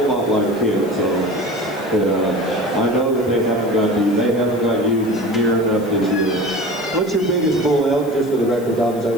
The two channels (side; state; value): left; noise; hiss, 22 dB below the sound